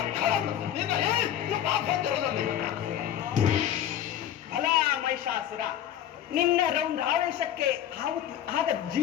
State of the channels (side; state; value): right; quieter; 10.8 dB